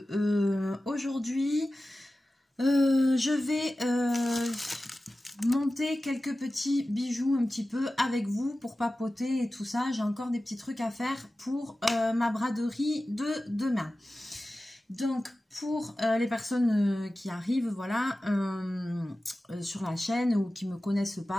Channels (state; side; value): normal; both; correlation 0.95